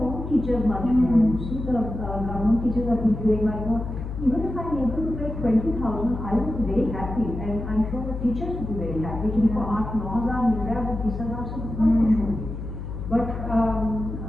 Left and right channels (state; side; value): noise; left; hum, 7 dB below the sound